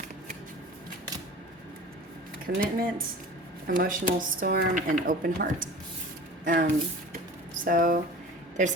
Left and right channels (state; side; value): normal; both; correlation 0.40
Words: Commitment, Emotional Storm, and Open Heart. So there's